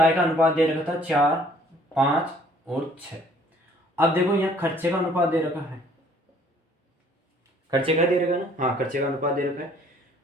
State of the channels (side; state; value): both; normal; correlation 0.58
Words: का अनुपात दे रखा था 4, 5 और 6। अब देखो यहाँ खर्चे का अनुपात दे रखा है, खर्चे का दे रखा है ना, हाँ खर्चे का अनुपात दे रखा है।